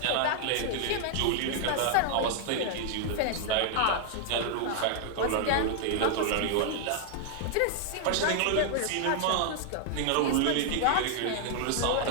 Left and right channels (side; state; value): both; different; correlation 0.00